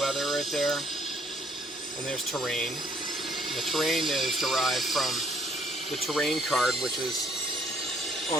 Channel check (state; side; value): normal; both; correlation 0.65